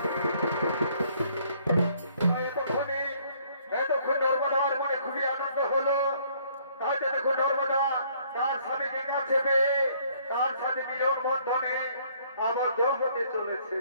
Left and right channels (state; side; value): inverted; both; correlation -0.63